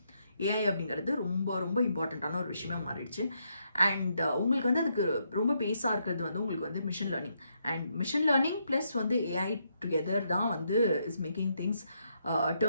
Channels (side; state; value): both; inverted; correlation -0.78